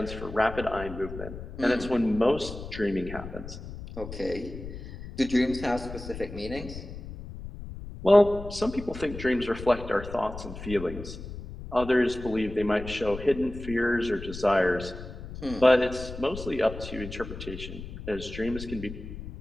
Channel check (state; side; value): noise; left; rumble, 11 dB below the sound